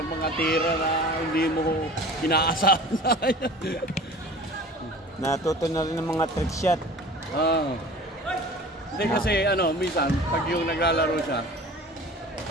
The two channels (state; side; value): normal; both; correlation 0.41